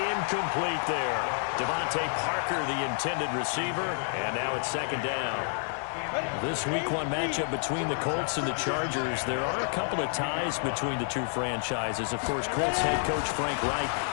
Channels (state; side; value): silent; right; 58 dB below the other